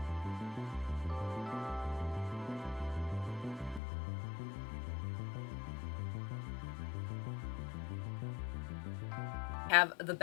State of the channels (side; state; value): right; drops out; at 3.8 s